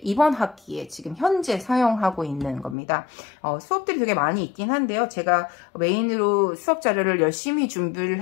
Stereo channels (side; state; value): right; drops out; at 2.8 s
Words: 이번 학기에 지금 현재 사용하고 있는 겁니다. 수업들이 되게 많이 있긴 한데요. 제가 메인으로 수업 자료를 열심히 준비를